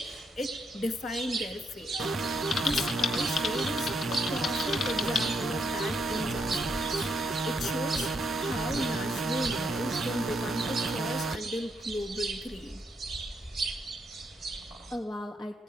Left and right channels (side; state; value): both; normal; correlation 0.77